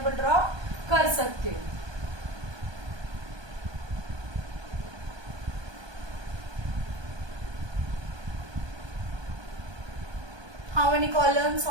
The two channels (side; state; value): left; late; 1.2 ms